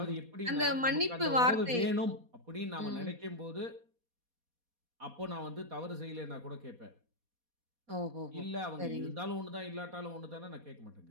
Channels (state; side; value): late; left; 4.2 ms